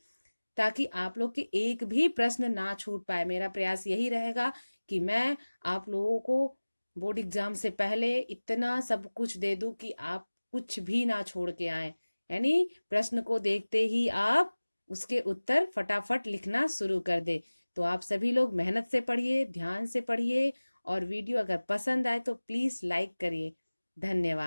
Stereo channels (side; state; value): both; inverted; correlation -1.00